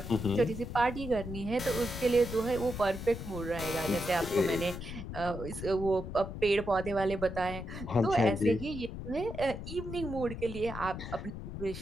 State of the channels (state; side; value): noise; left; rumble, 8 dB below the sound